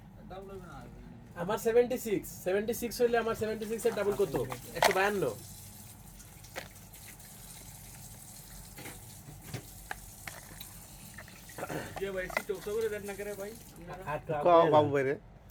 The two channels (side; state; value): both; identical; correlation 1.00